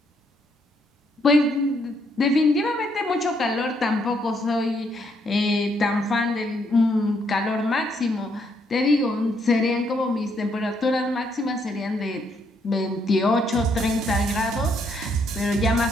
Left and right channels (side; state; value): both; normal; correlation 0.73